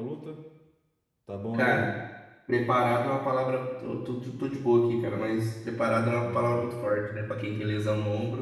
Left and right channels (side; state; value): both; identical; correlation 1.00